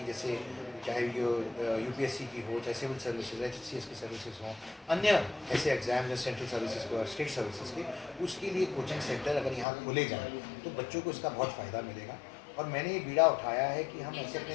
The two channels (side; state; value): right; drops out; at 9.7 s